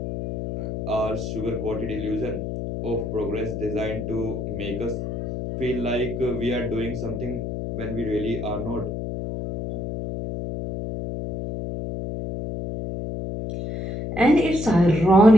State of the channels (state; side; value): noise; left; hum, 5 dB below the sound